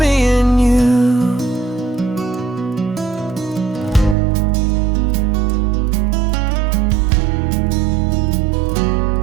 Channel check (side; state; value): left; drops out; at 4.2 s